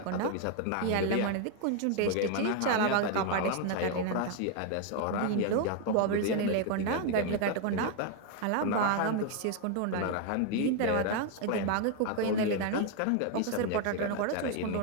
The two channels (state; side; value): different; both; correlation 0.01